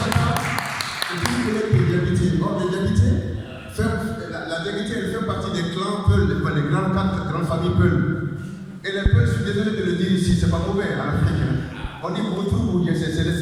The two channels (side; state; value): both; identical; correlation 1.00